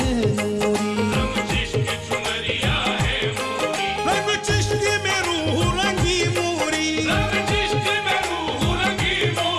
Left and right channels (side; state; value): both; identical; correlation 1.00